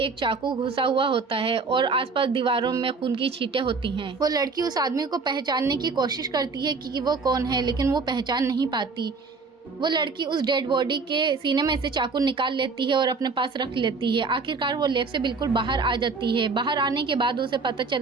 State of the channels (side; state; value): left; quieter; 4.4 dB